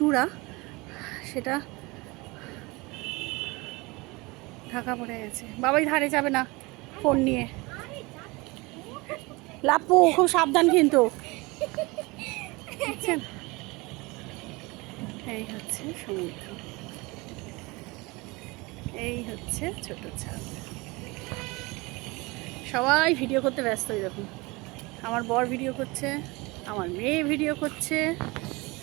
সেটা ঢাকা পড়ে গেছে। বাবাই ধারে যাবে না ফোন নিয়ে। লাপু খুব সাবধান কিন্তু, বুঝছেন? এই হচ্ছে সমুদ্র, এই হচ্ছে ছোট ছাদ। সবাই ভিডিও করতে ব্যস্ত। দেখুন আমার বর ভিডিও করছে, আমার মেয়ে ভিডিও করছে,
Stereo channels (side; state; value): left; quieter; 24.4 dB